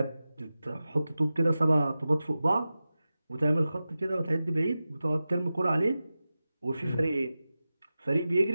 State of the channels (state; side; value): inverted; both; correlation -0.95